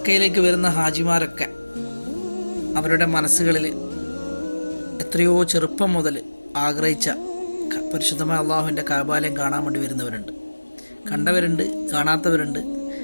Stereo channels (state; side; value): inverted; both; correlation -1.00